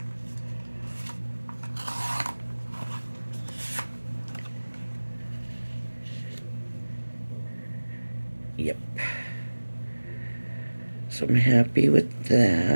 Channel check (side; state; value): both; inverted; correlation -1.00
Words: Yep. So I'm happy with